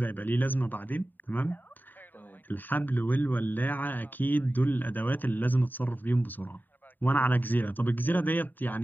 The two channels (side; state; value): right; late; 0.089 ms